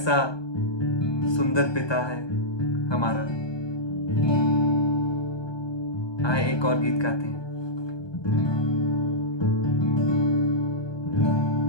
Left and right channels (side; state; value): right; late; 1.2 ms